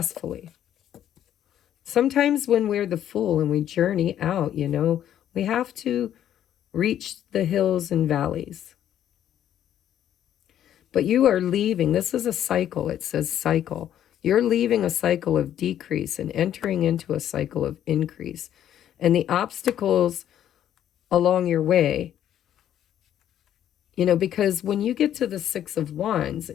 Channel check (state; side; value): quieter; right; 10.8 dB